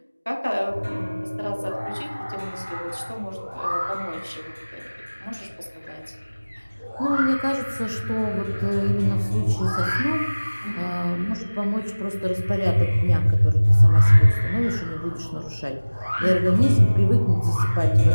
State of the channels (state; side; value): inverted; both; correlation -1.00